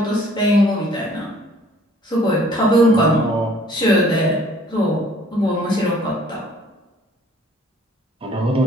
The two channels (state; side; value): normal; both; correlation 0.57